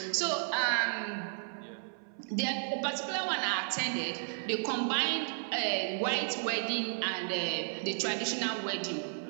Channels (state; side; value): silent; left; 56 dB below the other